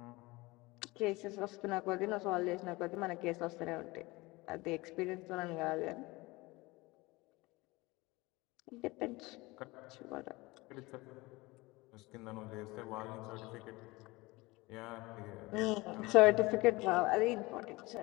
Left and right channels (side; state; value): right; quieter; 22.2 dB